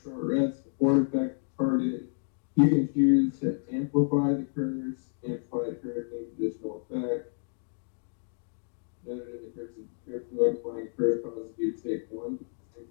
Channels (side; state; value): right; silent; digital silence